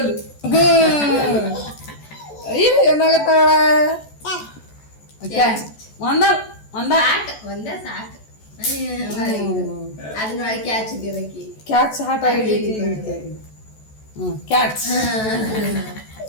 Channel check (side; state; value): right; late; 14 ms